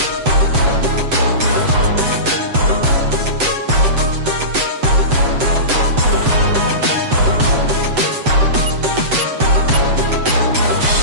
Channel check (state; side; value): late; left; 7.9 ms